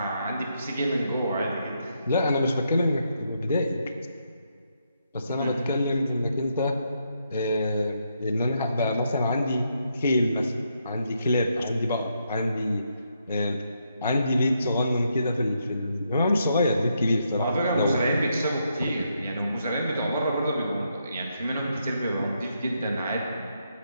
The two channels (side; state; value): both; inverted; correlation -0.79